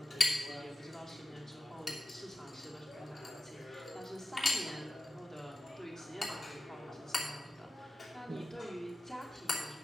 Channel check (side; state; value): both; normal; correlation 0.92